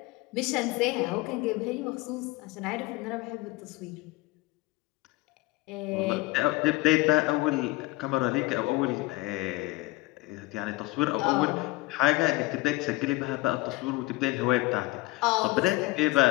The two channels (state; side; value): quieter; right; 21.2 dB